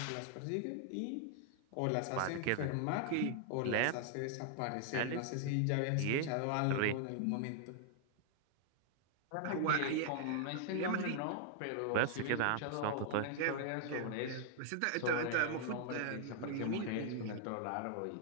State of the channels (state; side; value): different; both; correlation 0.00